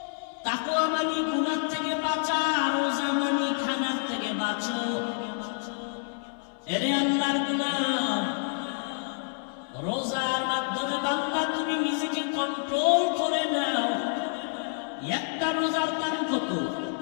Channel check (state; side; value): silent; right; 59 dB below the other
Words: তাকওয়া মানে গুনাহ থেকে বাঁচা, রোজা মানে খানার থেকে বাঁচো। এরে আল্লাহর গোলাম, রোজার মাধ্যমে বান্দা তুমি নিজেকে কন্ট্রোল করে নাও। একটা রোজার দাম কত?